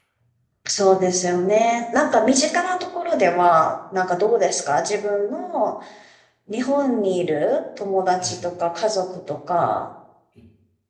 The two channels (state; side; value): identical; both; correlation 1.00